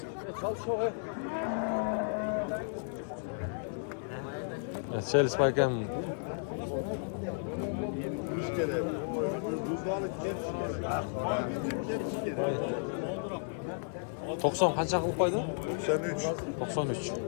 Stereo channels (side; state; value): right; silent; digital silence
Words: Chelis ekan. Uch kerak. Buzolib ketdi. 90 qancha qilib qo'ydi? 93. 93.